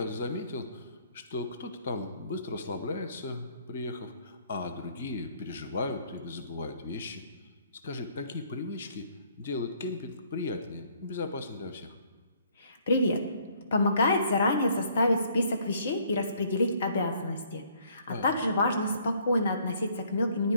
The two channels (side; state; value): both; inverted; correlation -0.63